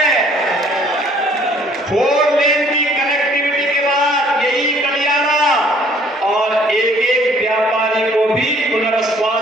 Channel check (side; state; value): both; normal; correlation 0.58